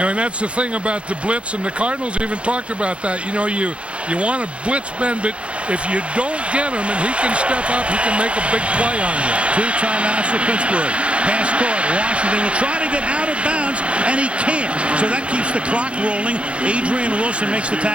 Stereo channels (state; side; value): late; left; 0.060 ms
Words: know, and that's the thing about the blitz, and the Cardinals even talked about that. You know, you want to blitz Ben, but if you don't get him and he can step up, he can make a big play on you. 2 timeouts for Pittsburgh. Pass caught. Washington will try to get out of bounds, and he can't. So that keeps the clock rolling. Adrian Wilson makes the